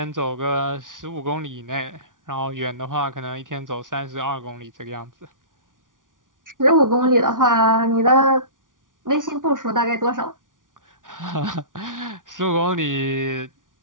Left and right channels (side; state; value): left; late; 0.88 ms